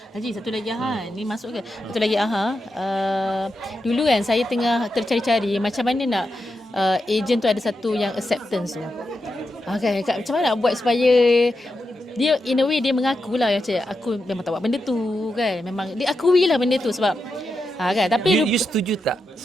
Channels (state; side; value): normal; both; correlation 0.87